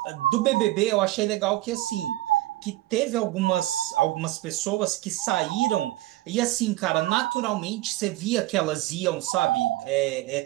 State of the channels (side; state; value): left; quieter; 17.2 dB